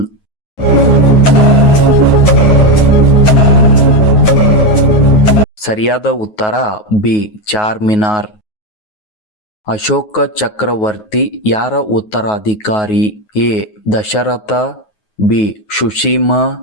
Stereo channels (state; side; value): late; right; 9.4 ms